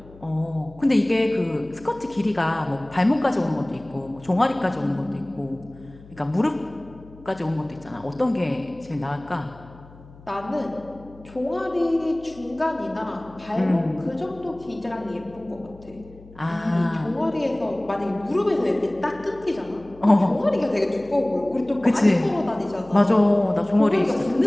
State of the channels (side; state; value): left; noise; hum, 22 dB below the sound